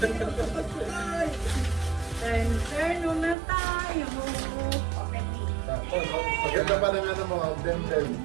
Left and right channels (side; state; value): left; drops out; at 3.4 s